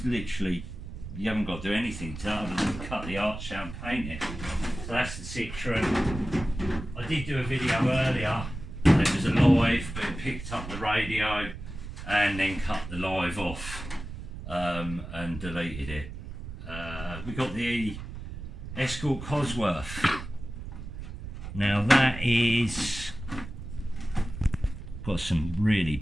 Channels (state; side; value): noise; right; rumble, 10 dB below the sound